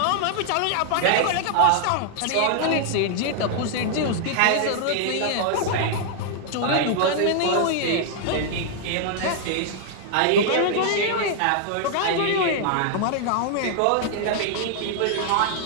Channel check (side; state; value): both; different; correlation -0.01